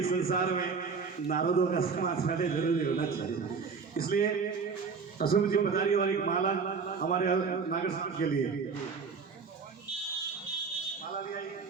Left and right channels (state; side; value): quieter; left; 5.3 dB